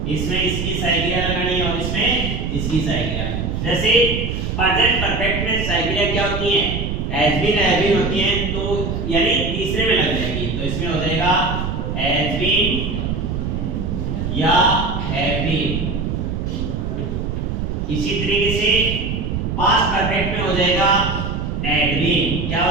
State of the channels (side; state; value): right; noise; rumble, 2 dB below the sound